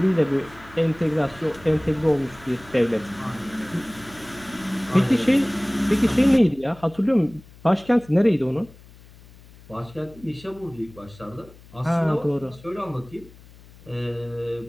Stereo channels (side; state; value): left; noise; hum, 23 dB below the sound